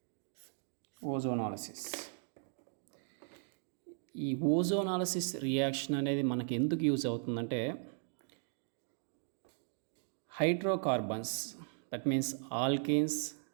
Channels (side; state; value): left; silent; 53 dB below the other